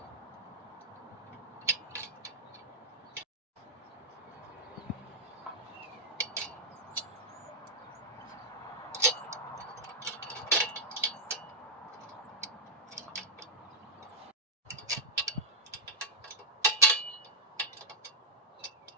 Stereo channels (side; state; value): both; normal; correlation -0.10